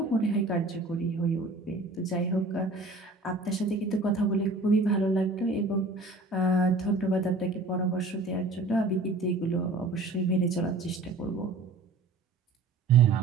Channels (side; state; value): left; quieter; 3.1 dB